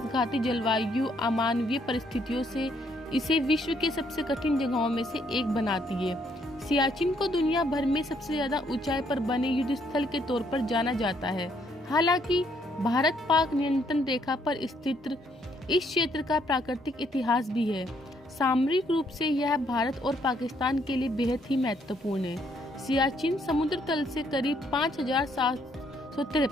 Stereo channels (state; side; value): normal; both; correlation 0.70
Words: जलवायु अमानवीय परिस्थितियों से इसे विश्व के सबसे कठिन जगहों में से एक बनाती है। सियाचिन को दुनिया भर में सबसे ज्यादा ऊंचाई पर बने युद्ध स्थल के तौर पर जाना जाता है। हालांकि भारत पाक नियंत्रण रेखा पर स्थित इस क्षेत्र का प्राकृतिक इतिहास भी है। सामरिक रूप से यह भारत और पाकिस्तान के लिए बेहद ही महत्वपूर्ण है। सियाचिन समुद्र तल से करीब